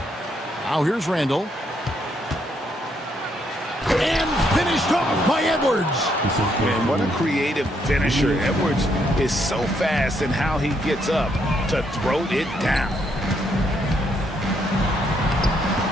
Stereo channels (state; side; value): normal; both; correlation 0.74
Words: Now here's Randall. And finished off by Edwards. Man, what a creative finisher. Edwards is so fast in how he gets up to throw it down.